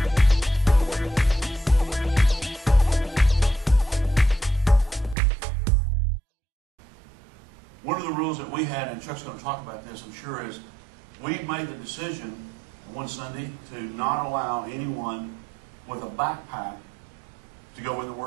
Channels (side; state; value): left; drops out; at 5.2 s